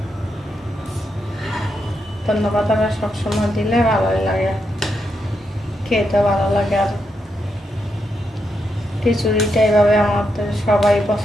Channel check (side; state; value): both; normal; correlation 0.82